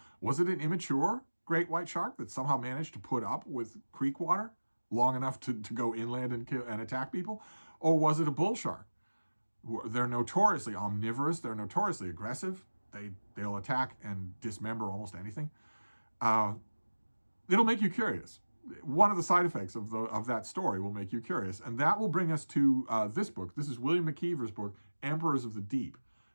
Was it an immature great white shark that somehow managed to put up with creek water long enough to go inland and attack people? Or was it a bull shark? They're notoriously omnivorous. They're notoriously aggressive. They'll attack and dismember almost anything. It'll make you curious. One of the side effects of that story will make you curious. And that will bring us to this book. This is William McKeever's book, Emperors of the Deep,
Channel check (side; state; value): both; inverted; correlation -1.00